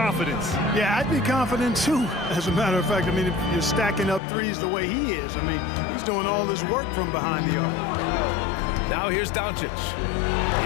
Yeah, I'd be confident too. As a matter of fact, I mean, if you're stacking up threes the way he is, I mean, he's doing all his work from behind the arc. Now here's Doncic.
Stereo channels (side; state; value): right; drops out; at 4.2 s